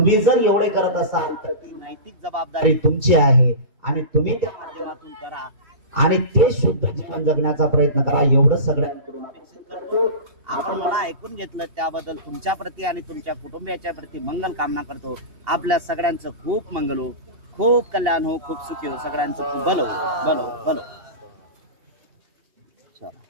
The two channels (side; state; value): left; late; 2.8 ms